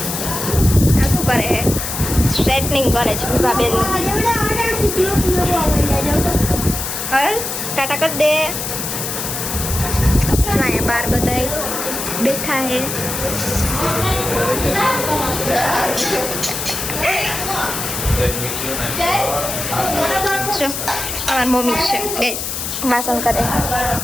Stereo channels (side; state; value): left; noise; hiss, 4 dB below the sound